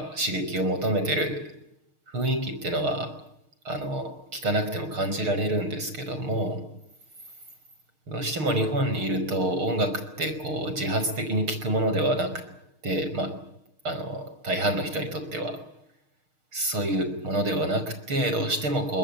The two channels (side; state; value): left; late; 6.5 ms